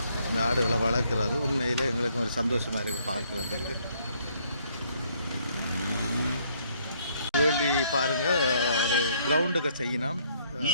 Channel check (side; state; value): both; inverted; correlation -0.67